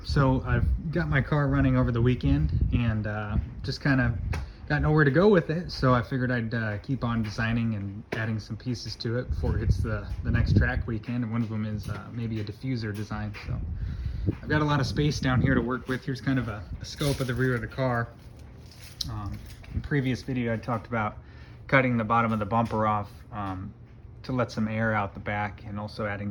so I've got my car running over the weekend and just kind of got nowhere to go with it, so I figured I'd keep on designing and adding some pieces to it before it hits the next track weekend, and one of them is maybe a diffuser design. So I've got a lot of space down here to work with. Here's kind of a scope of the rear of the car. In previous video I talked about cutting the bottom of the bumper off to let some air out the back, and also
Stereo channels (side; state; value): both; identical; correlation 1.00